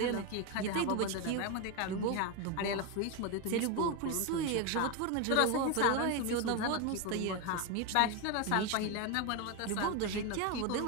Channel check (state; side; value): different; both; correlation 0.02